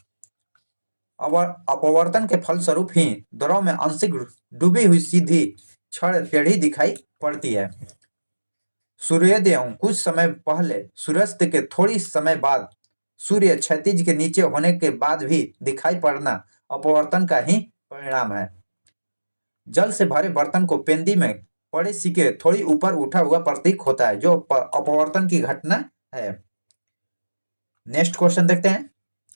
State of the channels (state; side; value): inverted; both; correlation -1.00